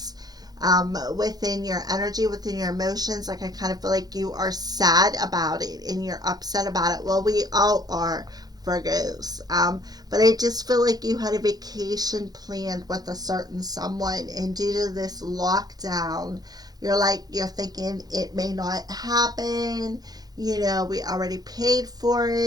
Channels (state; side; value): late; left; 0.19 ms